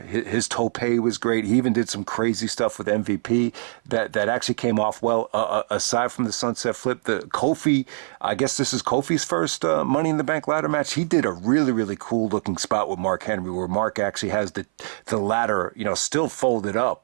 tope was great. He even did some crazy stuff with MVP that actually came off well. Aside from the sunset flip, the Kofi, I guess this is Kofi's first Money in the Bank ladder match. He did a really, really cool looking spot with Mark Henry, where Mark actually has the ladder, still folded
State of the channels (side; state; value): left; silent; 57 dB below the other